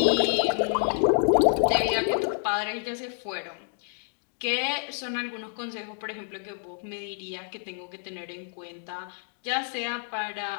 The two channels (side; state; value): right; silent; 57 dB below the other